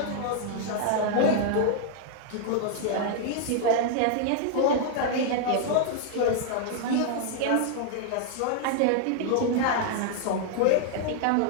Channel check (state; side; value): different; both; correlation 0.00